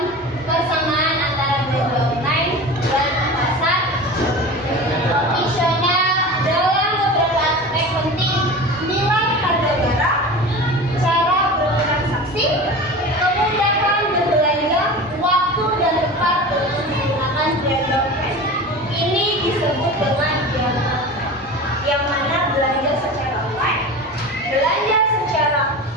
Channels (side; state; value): both; normal; correlation 0.33